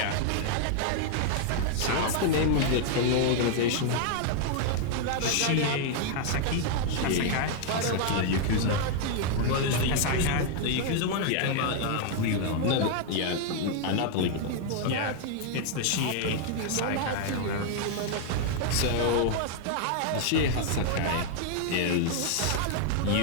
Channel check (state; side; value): different; both; correlation 0.00